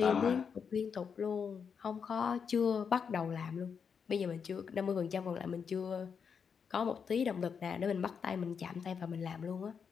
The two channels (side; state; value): right; quieter; 6.5 dB